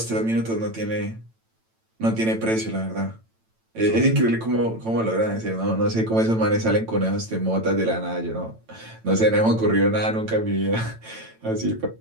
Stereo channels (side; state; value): left; late; 9.0 ms